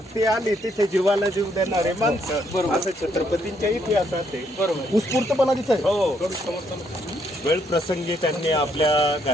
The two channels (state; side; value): normal; both; correlation 0.72